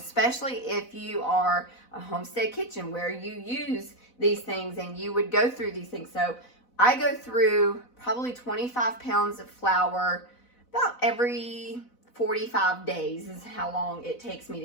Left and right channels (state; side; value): late; right; 4.0 ms